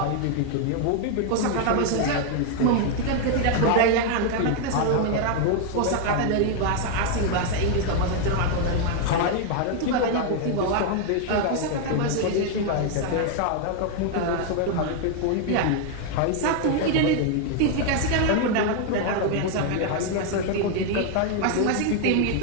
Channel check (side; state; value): both; different; correlation 0.00